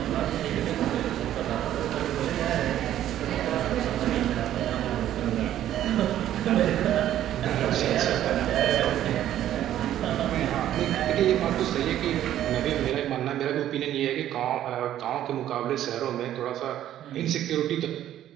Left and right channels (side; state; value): left; quieter; 12.0 dB